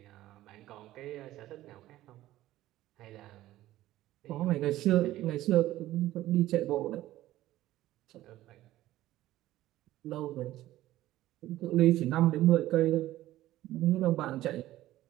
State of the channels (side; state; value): left; quieter; 15.1 dB